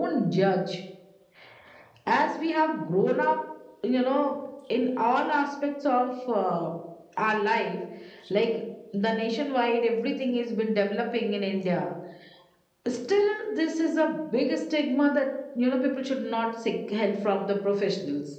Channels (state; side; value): identical; both; correlation 1.00